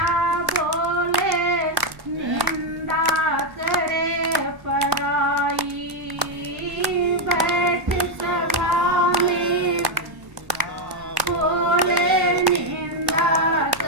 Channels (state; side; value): late; left; 1.1 ms